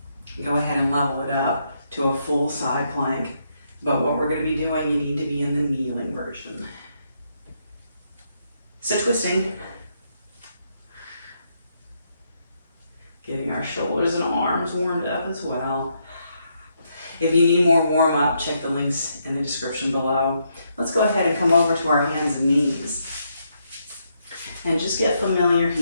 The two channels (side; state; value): both; inverted; correlation -0.77